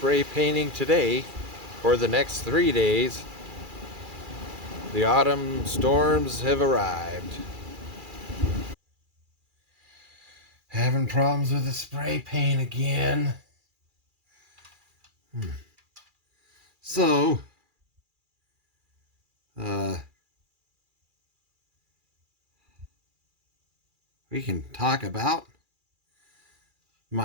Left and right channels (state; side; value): late; left; 2.4 ms